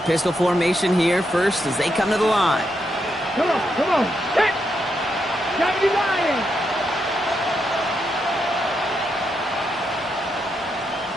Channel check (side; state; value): both; normal; correlation 0.82